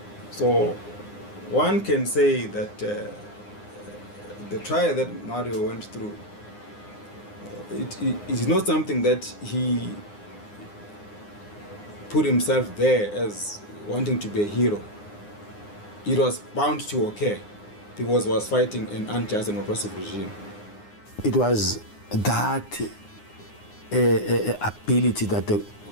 So one can say that the trial that Mario went through, it is not something that he put himself there as wanting to be a hero. It was bound to occur because he was fighting an unjust and oppressive regime. It was that ability that the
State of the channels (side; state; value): right; late; 9.7 ms